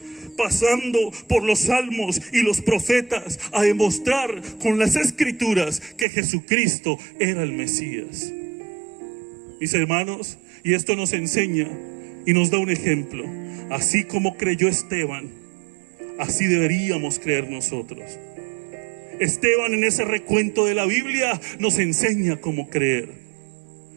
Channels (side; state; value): left; drops out; at 6.1 s